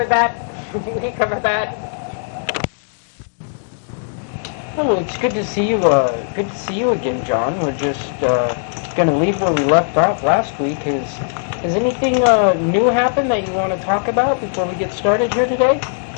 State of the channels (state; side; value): silent; right; digital silence